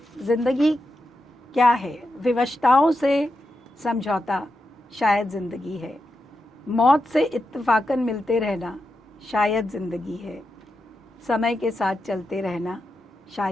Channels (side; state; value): both; normal; correlation 0.87